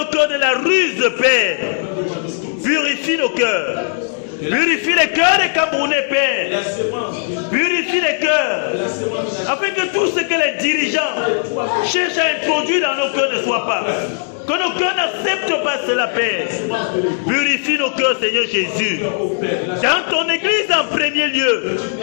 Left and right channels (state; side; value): silent; right; digital silence